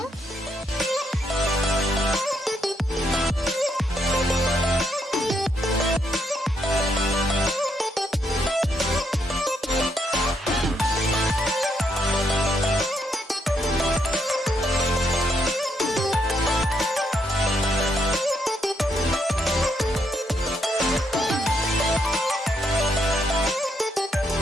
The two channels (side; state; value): both; normal; correlation 0.76